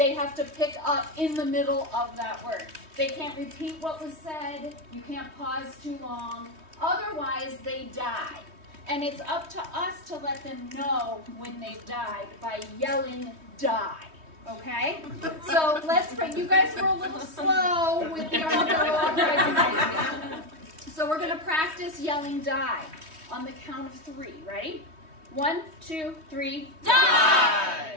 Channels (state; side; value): late; left; 3.2 ms